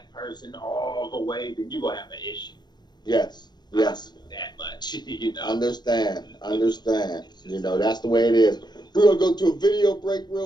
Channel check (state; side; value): late; right; 0.21 ms